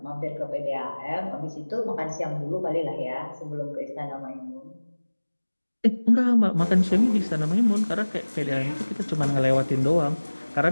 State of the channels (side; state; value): both; inverted; correlation -1.00